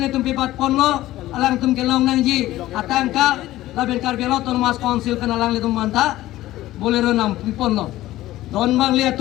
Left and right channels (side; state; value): right; quieter; 15.6 dB